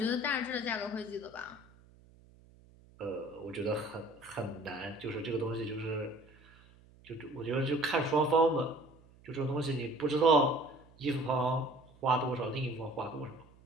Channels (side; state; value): right; noise; hum, 26 dB below the sound